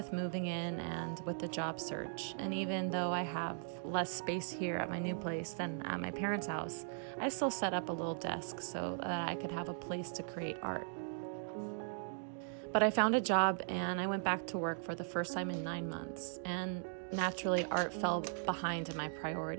moving in and with the job search, and even though I have less space here at my new place than at my parents' house, I still set up a little desk so that I could have a place to create art. But I found a job and I went back to work for the first time in 9 months, and naturally art fell behind in my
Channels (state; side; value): silent; left; digital silence